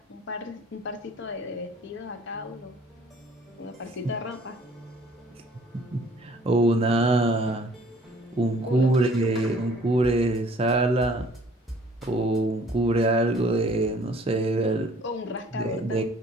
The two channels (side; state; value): both; normal; correlation 0.56